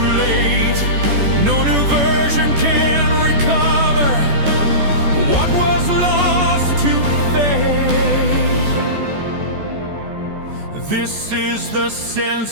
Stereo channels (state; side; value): late; left; 14 ms